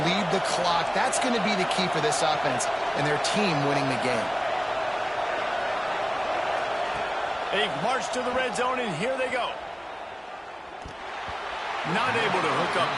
the clock. That's going to be the key for this offense and their team winning the game. They march to the red zone, and here they go. Not able to hook up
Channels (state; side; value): identical; both; correlation 1.00